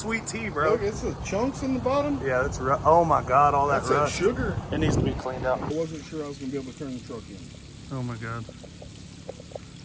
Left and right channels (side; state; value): both; identical; correlation 1.00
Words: tea, bro. Look, it's the chunks in the bottom. Yeah, that's oh my god, all That's that that rust. sugar. It needs to be cleaned out. I wasn't sure I was gonna be able to turn the truck in. Oh my god.